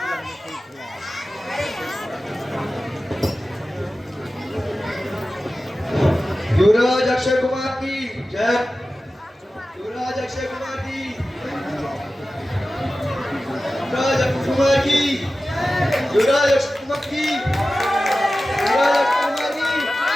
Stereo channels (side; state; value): both; normal; correlation 0.95